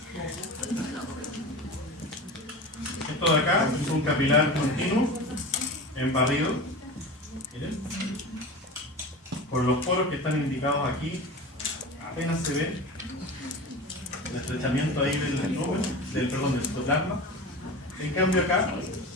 Esto de acá es un capilar continuo en barrido. Miren. por los poros que están indicados aquí, apenas se ve el estrechamiento ahí del citoplasma. En cambio acá,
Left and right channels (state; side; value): normal; both; correlation 0.30